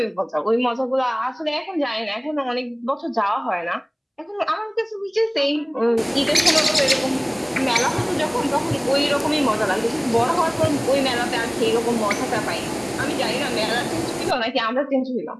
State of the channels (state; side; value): identical; both; correlation 1.00